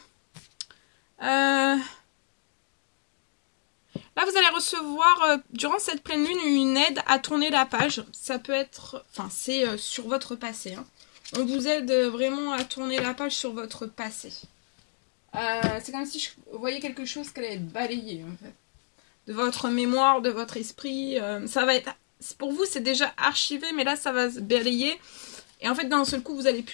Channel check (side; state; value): right; silent; digital silence